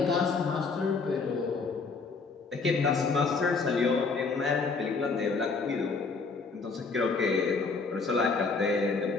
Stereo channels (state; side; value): quieter; right; 4.5 dB